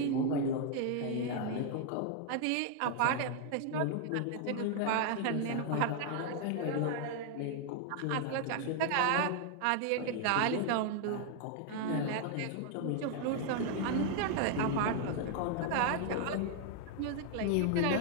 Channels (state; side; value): different; both; correlation 0.00